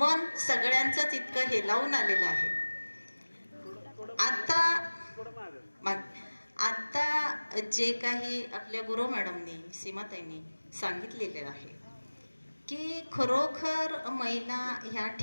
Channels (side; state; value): both; inverted; correlation -1.00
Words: सगळ्यांचंच इतकं हेलावून आलेलं आहे. आता जे काही आपल्या गुरु मॅडमनी, सीमाताईंनी सांगितलेले आहे की खरोखर महिला ह्या